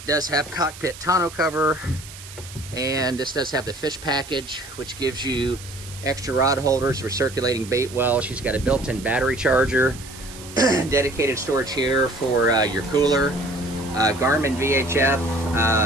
does have cockpit tonneau cover, and this does have the fish package, which gives you extra rod holders for circulating bait well. She's got a built-in battery charger, dedicated storage here for your cooler, Garmin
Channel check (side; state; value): right; noise; hiss, 16 dB below the sound